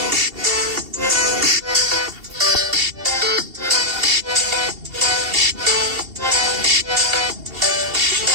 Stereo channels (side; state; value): left; late; 2.7 ms